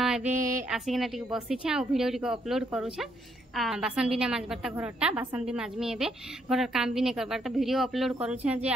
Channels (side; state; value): both; normal; correlation 0.73